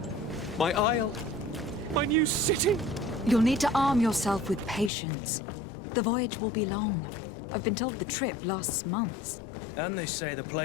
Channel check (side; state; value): right; drops out; at 4.9 s